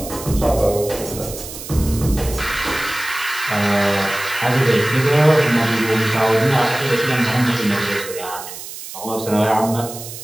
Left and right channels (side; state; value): right; noise; hiss, 11 dB below the sound